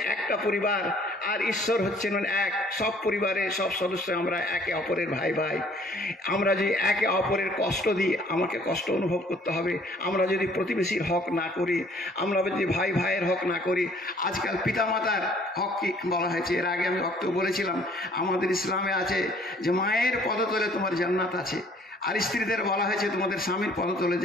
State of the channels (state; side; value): normal; both; correlation 0.58